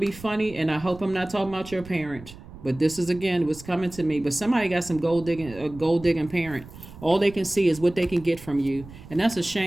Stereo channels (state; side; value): noise; right; rumble, 17 dB below the sound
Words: funny, and I hope I'm not talking about your parent. But this is, again, what's coming to me. But somebody got a gold digging parent. All they can see is what they can get from you. And that's a